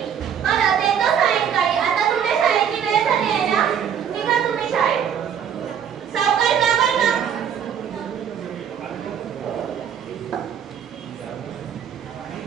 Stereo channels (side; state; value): left; quieter; 8.4 dB